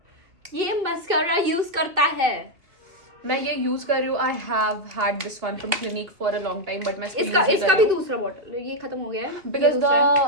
ये मस्करा यूज करता है. मैं ये यूज कर रही हूँ. I have had this one from clinic for a long time, but मैं इसका भी दूसरा बॉटल ये खत्म हो गया है because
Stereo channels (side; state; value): left; late; 3.0 ms